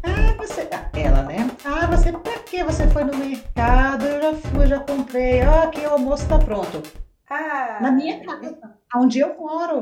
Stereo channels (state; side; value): identical; both; correlation 1.00